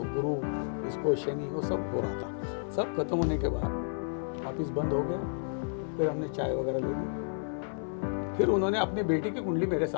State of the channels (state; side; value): silent; right; 57 dB below the other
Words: गुरु, इसको शनि, वो सब हो रहा था। सब खत्म होने के बाद ऑफिस बंद हो गया, फिर हमने चाय वगैरह ले ली। फिर उन्होंने अपनी बेटी की कुंडली मेरे